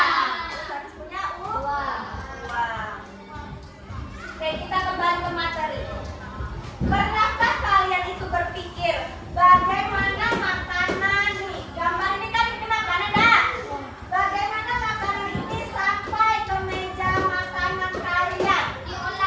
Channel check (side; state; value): both; identical; correlation 1.00